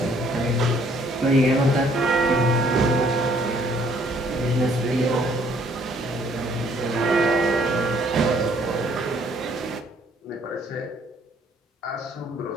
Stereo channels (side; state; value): both; normal; correlation 0.63